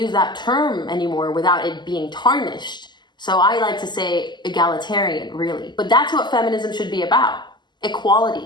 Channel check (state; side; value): late; right; 0.21 ms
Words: that term anymore without it being tarnished. So I like to say egalitarian, really. But that's what feminism should be about.